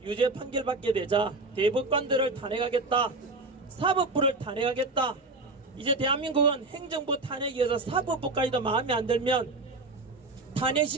유죄 판결받게 되자 대법관들을 탄핵하겠다, 사법부를 탄핵하겠다. 이제 대한민국은 행정부 탄핵에 의해서 사법부까지도 마음에 안 들면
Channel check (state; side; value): quieter; left; 3.2 dB